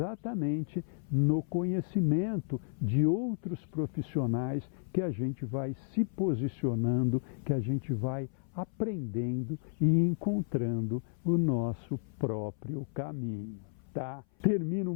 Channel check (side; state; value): right; silent; 56 dB below the other